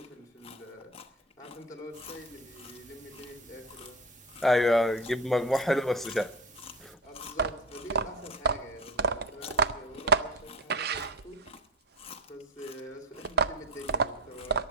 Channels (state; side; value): normal; both; correlation 0.27